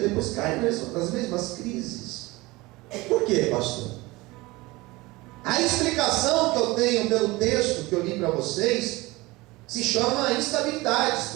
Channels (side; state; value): left; quieter; 21.6 dB